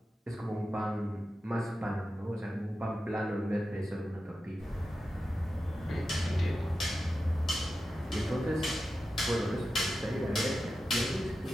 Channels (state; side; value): normal; both; correlation 0.91